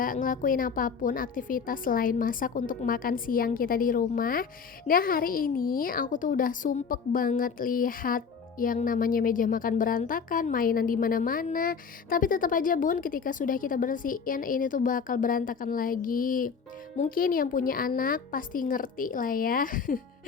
ngelakuin apapun aktivitas selain masak untuk makan siang kita di rumah. Nah hari ini aku tuh udah sumpek banget lihat yang namanya meja makan berantakan, mainan di mana-mana. Tapi tetap aja bun, ketika sudah kita bersihin ini tuh bakal berantakan lagi. Mungkin yang punya anak pasti ngerti lah ya.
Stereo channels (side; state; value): right; quieter; 5.9 dB